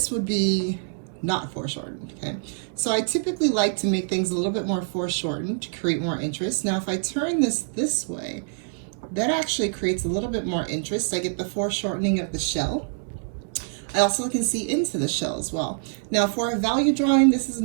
would be not foreshortened, okay? So I typically like to make things a little bit more foreshortened to create more interest. Now, if I turn this way, that actually creates a little bit more interest. I get the foreshortening of the shell. I also can see into the shell as well. Now for a value drawing, this is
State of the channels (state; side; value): silent; left; 61 dB below the other